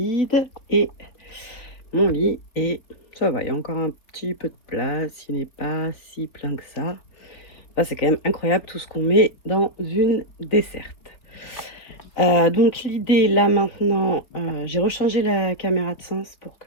et mon lit est... Ça va, il y a encore un petit peu de place, il n'est pas si plein que ça. Enfin, c'est quand même incroyable tout ce qu'on met dans une desserte. Donc l'idée là maintenant, j'ai rechangé la caméra de sens pour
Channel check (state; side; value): late; right; 3.7 ms